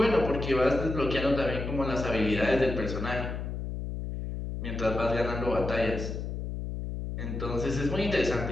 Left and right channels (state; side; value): noise; left; hum, 5 dB below the sound